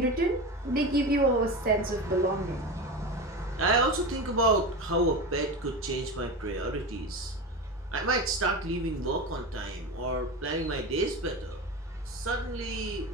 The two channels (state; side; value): normal; both; correlation 0.24